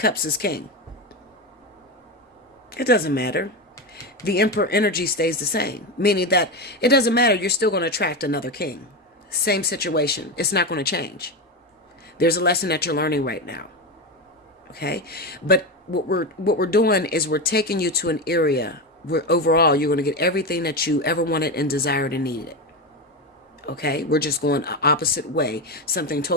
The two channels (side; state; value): both; normal; correlation 0.16